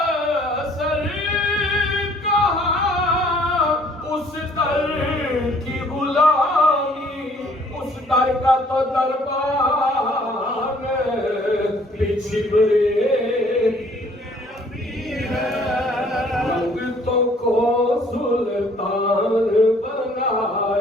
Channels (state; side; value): normal; both; correlation 0.59